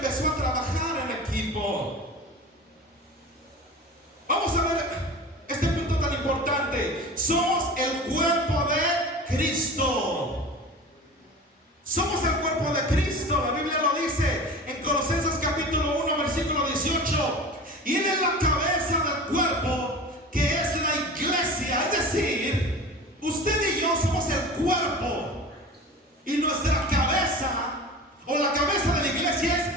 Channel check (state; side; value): normal; both; correlation 0.35